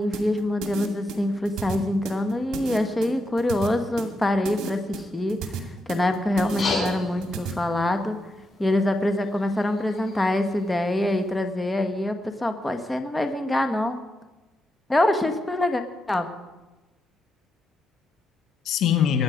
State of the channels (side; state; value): both; normal; correlation 0.83